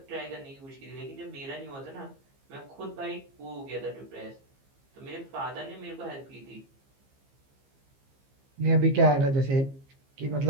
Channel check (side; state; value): left; late; 15 ms